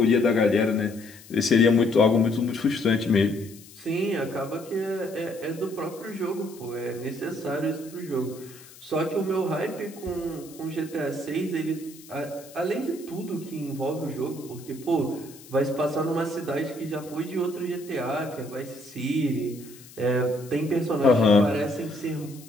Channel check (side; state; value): left; noise; hiss, 21 dB below the sound